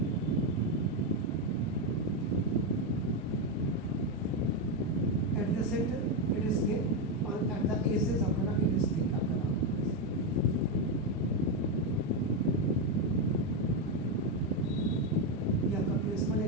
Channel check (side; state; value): both; normal; correlation 0.07